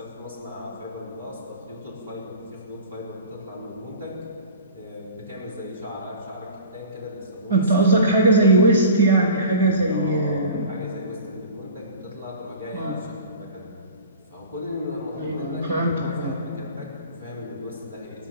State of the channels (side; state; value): both; inverted; correlation -0.38